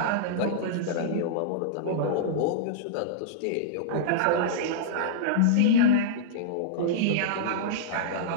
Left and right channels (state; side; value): different; both; correlation -0.02